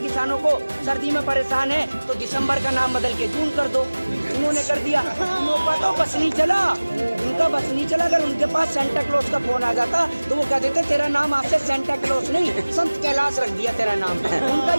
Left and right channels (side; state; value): both; inverted; correlation -1.00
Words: को, सर्दी में परेशान है, तो दिसंबर का नाम बदल के जून कर दो। उन्होंने कर दिया। उनका तो बस नहीं चला, उनका बस नहीं चला। अगर उनके पास सेंटा क्लॉज का फोन आ जाता तो वो कह देते तेरा नाम आज से सेंटा क्लॉज नहीं संत कैलाश रख दिया तेरा नाम। उनका